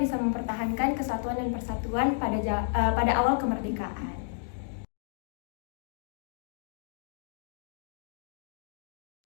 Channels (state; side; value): silent; right; digital silence